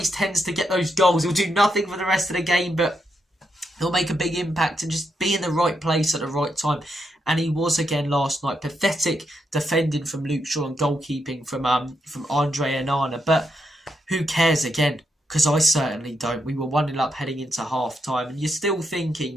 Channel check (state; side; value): normal; both; correlation 0.81